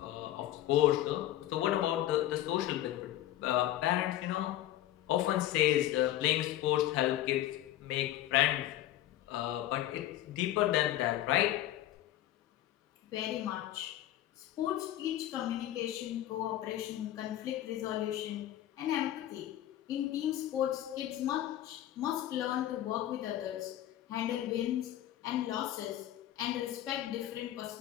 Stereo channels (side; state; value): right; quieter; 13.4 dB